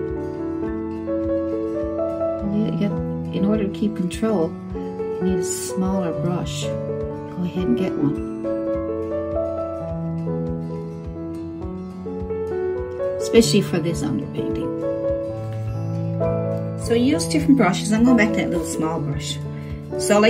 to keep control, you need a smaller brush. Go ahead and get one. Especially for this underpainting. So use different brushes. I'm going back to that little small brush. So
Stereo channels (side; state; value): both; identical; correlation 1.00